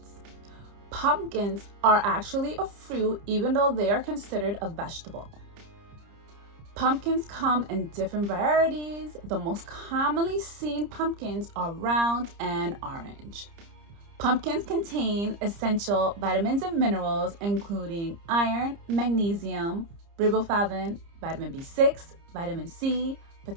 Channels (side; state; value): left; late; 30 ms